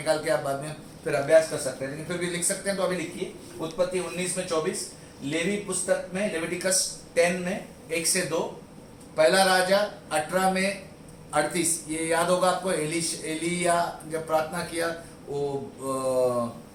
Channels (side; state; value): both; identical; correlation 1.00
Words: के आप बाद में फिर अभ्यास कर सकते हैं, लेकिन फिर भी लिख सकते हैं तो अभी लिखिए। उत्पत्ति 19 में 24, लेवी पुस्तक में लेविटिकस 10 में 1 से 2, पहला राजा 18 में 38। ये याद होगा आपको, एलिया जब प्रार्थना किया, वो